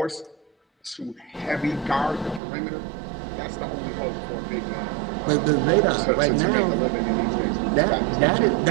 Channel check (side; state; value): left; drops out; at 2.4 s